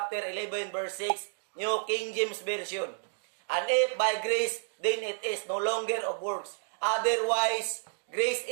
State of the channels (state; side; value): silent; left; digital silence